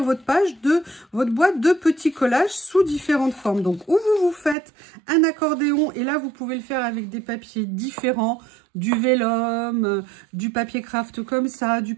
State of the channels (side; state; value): left; drops out; at 4.5 s